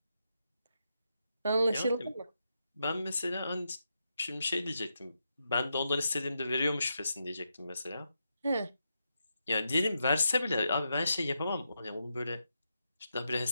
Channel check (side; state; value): both; inverted; correlation -0.85